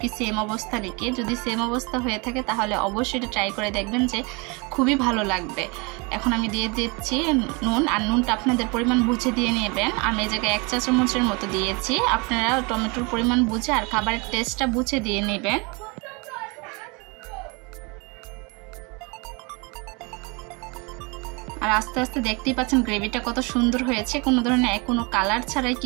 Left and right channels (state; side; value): quieter; left; 29.3 dB